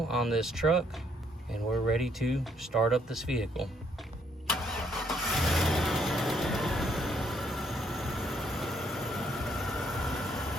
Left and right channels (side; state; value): both; normal; correlation 0.69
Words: on this truck and we're ready to start up this vehicle.